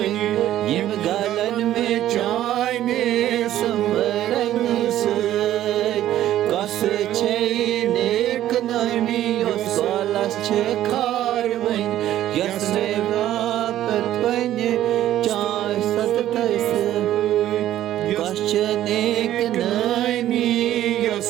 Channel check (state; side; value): quieter; left; 12.8 dB